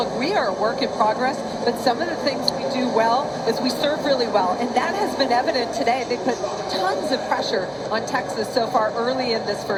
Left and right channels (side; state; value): both; identical; correlation 1.00